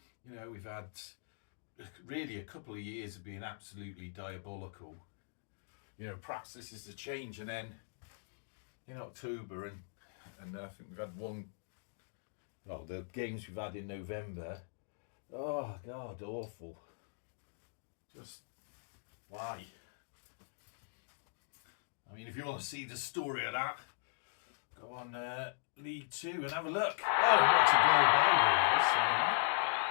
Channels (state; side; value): silent; right; digital silence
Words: You know, we've had really a couple of years of being absolutely diabolical. You know, perhaps this is the change. And then in October, and I think we've had one. Well, the games we've had in November. Oh God, awful. Just why? I mean, if you want to see the story of that, go on League 2 and have a look. Oh, what a goal by Rovers.